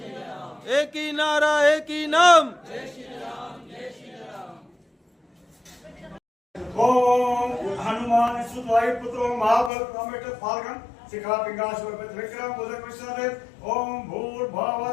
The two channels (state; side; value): drops out; right; at 9.7 s